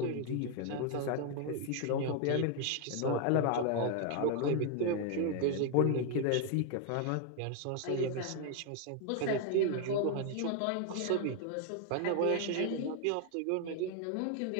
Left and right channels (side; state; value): both; different; correlation 0.00